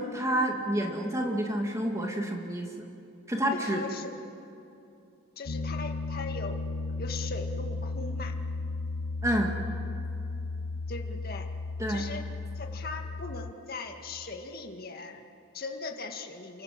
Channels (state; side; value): normal; both; correlation 0.59